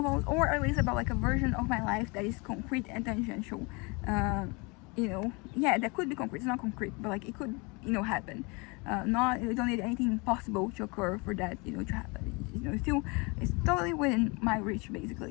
or at least about like a version of my life that is concrete and tangential. Yeah, that could be concrete. It's not concrete, but like it could happen. You don't need anything possible to occur for that to happen. It's totally within my reach,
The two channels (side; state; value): right; quieter; 28.6 dB